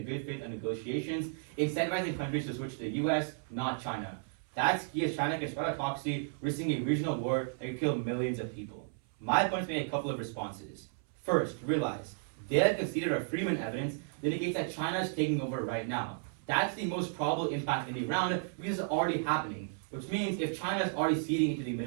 good faith on negotiations, incentivizing countries to switch to the U.S., not China. That's key as China can spread autocracy, risking a regional war that could kill millions of people. My opponents made a couple of responses. First, realize, they have conceded our Freeman evidence that indicates that China is taking over right now. That's the most probable impact in the round because it's already happening, which means if China is already ceding into the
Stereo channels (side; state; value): left; silent; 55 dB below the other